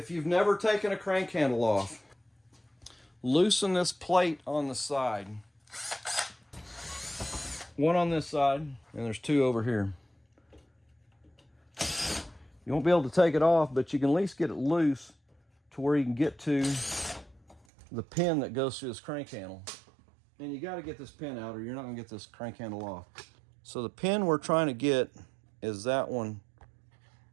you've never taken a crank handle off, loosen this plate on the side. One on this side, and there's 2 over here. You won't be able to take it off, but you can at least get it loose to where you can get to the pin that goes through this crank handle. And you got to get this pin out or you're not going to get this crank handle off. So the pin we're trying to get is that one.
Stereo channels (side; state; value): left; drops out; at 17.7 s